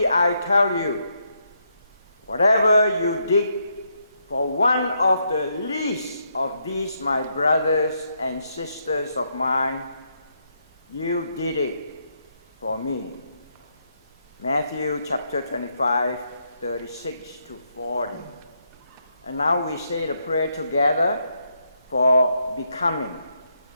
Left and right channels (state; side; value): inverted; both; correlation -0.78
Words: I tell you, whatever you did for one of the least of these my brothers and sisters of mine, you did it for me. Matthew chapter 25, 36 to 40. And now we say the prayer together for becoming.